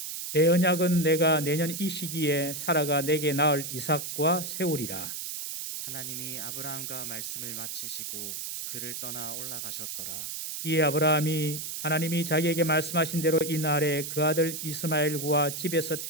내 언약은 내가 내년 이 시기에 사라가 내게 낳을 이삭과 세우리라. 하나님이 아브라함과 말씀을 마치시고 그를 떠나 올라가셨더라. 이에 아브라함이 하나님이 자기에게 말씀하신 대로 이 날에 그 아들 이스마엘과 집에서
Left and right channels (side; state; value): right; noise; hiss, 6 dB below the sound